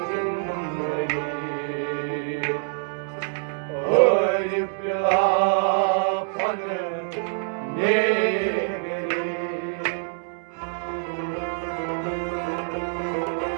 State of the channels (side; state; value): left; silent; 61 dB below the other